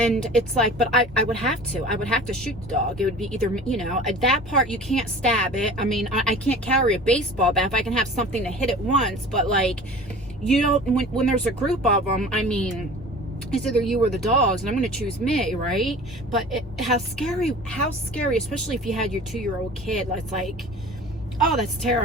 it's like, but I would have to shoot the dog. It would be either, you know, at that part you can't stab it. I mean, I can't carry a baseball bat if I can have something to hit it once, but like, you don't, when there's a group of them, I mean, it's either you or the dogs, and I'm going to choose me, right? But how scary, especially if you had your 2-year-old kid. It's like, oh, that's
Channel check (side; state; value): both; normal; correlation 0.41